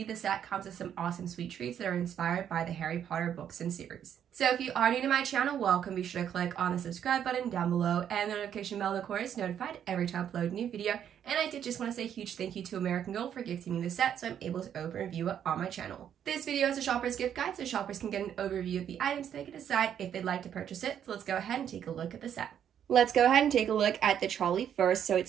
the set comes with some awesome sweet treats that are inspired by the Harry Potter books and series. So if you are new to my channel, welcome. Be sure to click on the subscribe button down below and the notification bell, of course, notified every time I upload a new video. And I did just want to say a huge thank you to American Girl for gifting me the set so I'm able to open and review it on my channel. This video is a shopper's gift guide so shoppers can get an overview of the items so they can decide if they'd like to purchase it. So let's go ahead and take a look at the set. Let's go ahead and take a look at the trolley first. So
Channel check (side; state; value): left; quieter; 9.3 dB